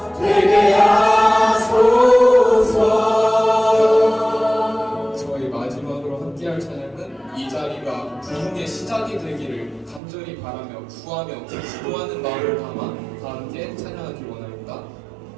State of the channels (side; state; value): left; drops out; at 10.0 s